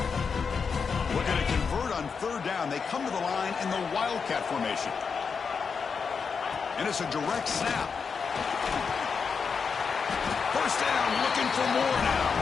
Looking to convert on 3rd down. They come to the line in the Wildcat formation. And it's a direct snap. First down, looking for more now.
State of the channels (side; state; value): right; quieter; 5.7 dB